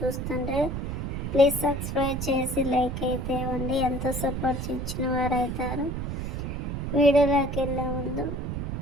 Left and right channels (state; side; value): noise; right; rumble, 3 dB below the sound